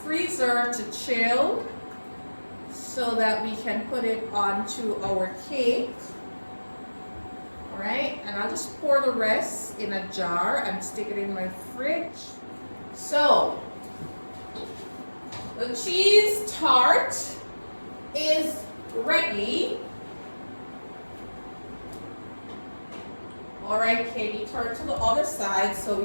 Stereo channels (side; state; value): both; inverted; correlation -1.00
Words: to chill so that we can put it onto our cake. All right, and I'll just pour the rest in a jar and stick it in my fridge. So, the cheese tart is ready. All right, Katie, turn to the other side so